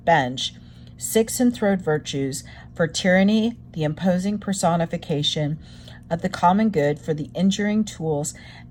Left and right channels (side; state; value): both; identical; correlation 1.00